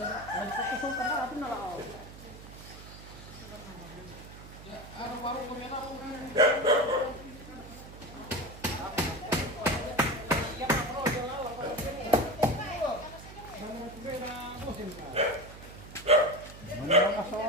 Ada satu karena apa nala. Mana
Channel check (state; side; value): noise; right; hum, 15 dB below the sound